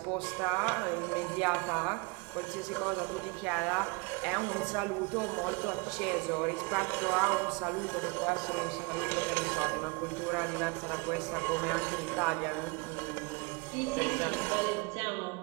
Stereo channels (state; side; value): quieter; left; 28.9 dB